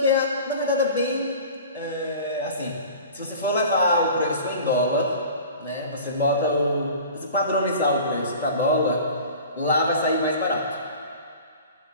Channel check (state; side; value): inverted; both; correlation -0.41